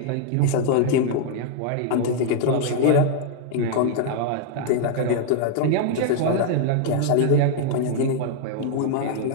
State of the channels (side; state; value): both; different; correlation -0.01